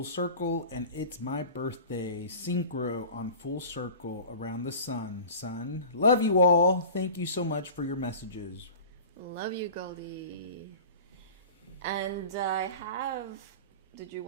circle, and it's my birthday. Synchro on full circle around the sun. Son, love you all. Thank you so much for your messages. Love you, Goldie. And I have... Did you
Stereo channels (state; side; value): inverted; both; correlation -0.38